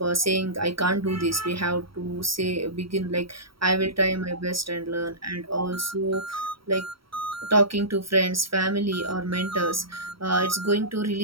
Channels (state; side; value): late; left; 0.75 ms